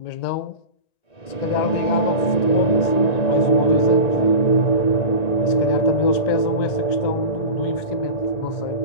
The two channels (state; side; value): late; right; 1.9 ms